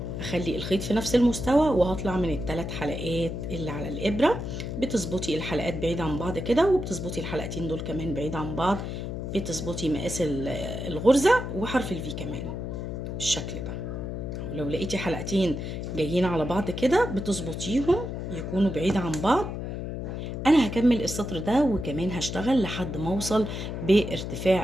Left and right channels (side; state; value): left; noise; hum, 5 dB below the sound